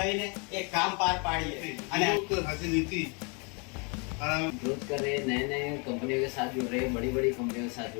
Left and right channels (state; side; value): quieter; right; 34.0 dB